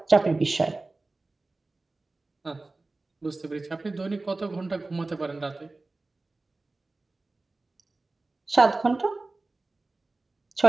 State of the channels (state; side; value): quieter; left; 3.3 dB